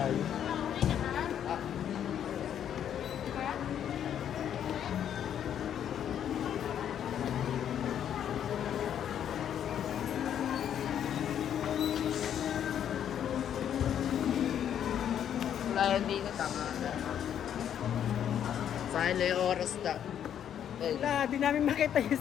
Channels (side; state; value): right; quieter; 9.5 dB